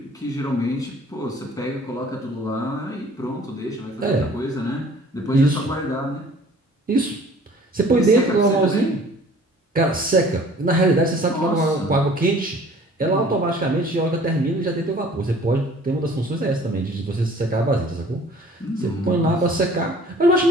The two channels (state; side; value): normal; both; correlation 0.51